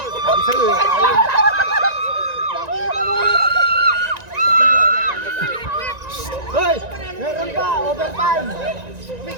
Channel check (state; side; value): late; left; 1.9 ms